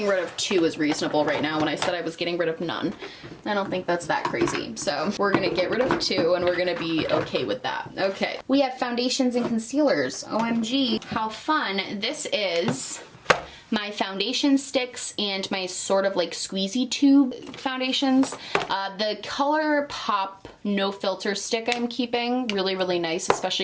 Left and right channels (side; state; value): both; identical; correlation 1.00